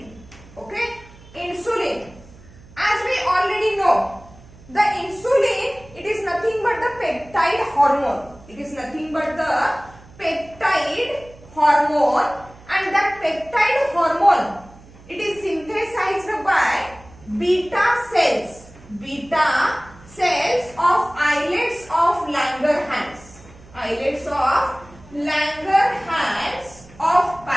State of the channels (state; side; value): noise; right; hum, 22 dB below the sound